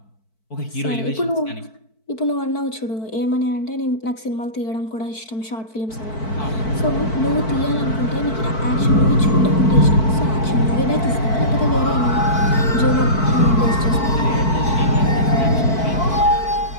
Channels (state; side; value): late; right; 4.6 ms